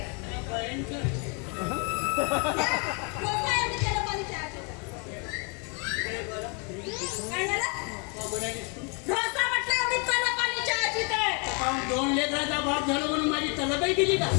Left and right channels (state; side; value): quieter; right; 34.6 dB